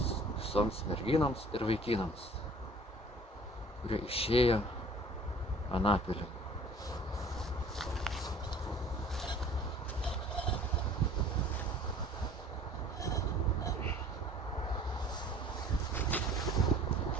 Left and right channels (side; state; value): both; normal; correlation 0.49